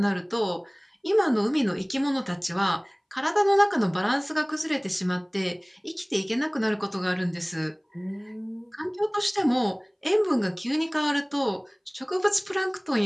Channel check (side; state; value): both; identical; correlation 1.00